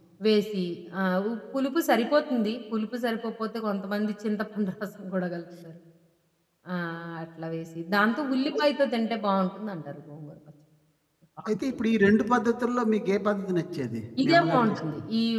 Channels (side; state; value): both; identical; correlation 1.00